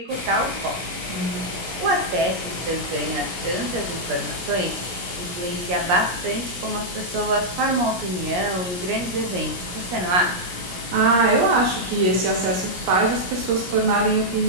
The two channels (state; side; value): late; left; 17 ms